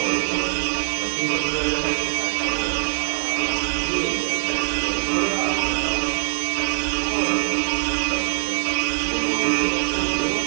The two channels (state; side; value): silent; left; digital silence